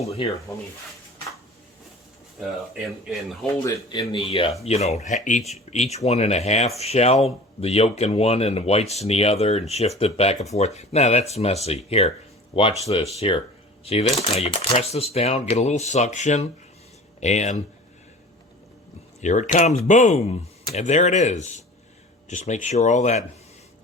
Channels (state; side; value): normal; both; correlation 0.41